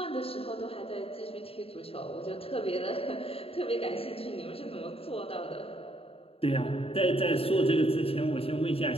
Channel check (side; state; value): right; late; 0.28 ms